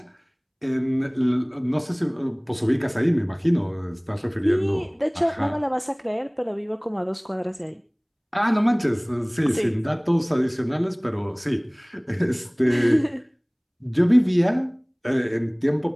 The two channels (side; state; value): both; identical; correlation 1.00